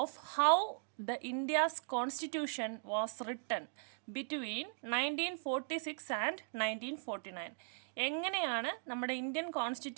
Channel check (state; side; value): silent; left; digital silence